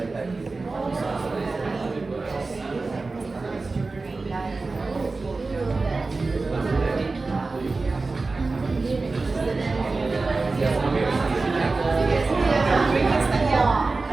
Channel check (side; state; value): left; quieter; 3.7 dB